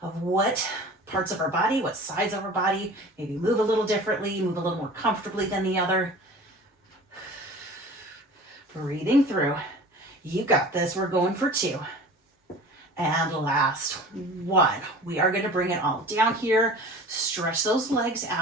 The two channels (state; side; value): normal; both; correlation 0.41